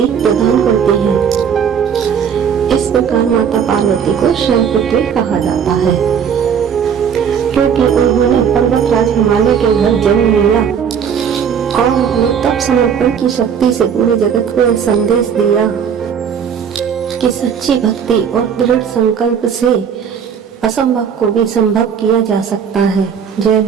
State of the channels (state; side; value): quieter; left; 7.5 dB